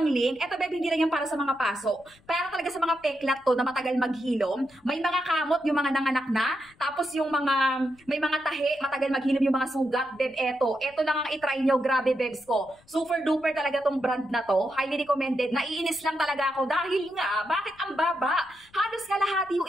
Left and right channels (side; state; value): left; noise; rumble, 30 dB below the sound